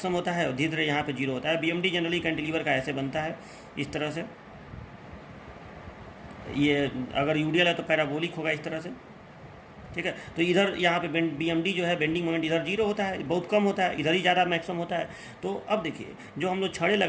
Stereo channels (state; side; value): identical; both; correlation 1.00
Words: होता है और धीरे धीरे यहाँ पे 0 होता है। बीएमडी जनरली कैंटिलीवर का ऐसे बनता है, इस तरह से। ये अगर यूडियल है तो पैराबोलिक होगा इस तरह से, ठीक है। तो इधर यहाँ पे बीएमडी जो है बेंडिंग मोमेंट इधर 0 होता है, बहुत कम होता है, इधर ही ज़्यादा मैक्सिमम होता है। तो अब देखिए जो हम लोग छड़े